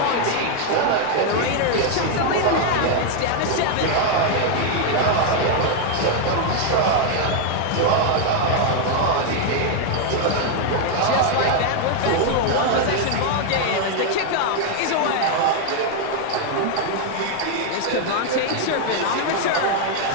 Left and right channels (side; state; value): both; different; correlation 0.00